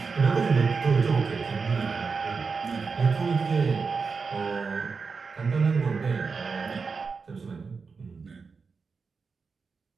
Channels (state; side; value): quieter; left; 5.0 dB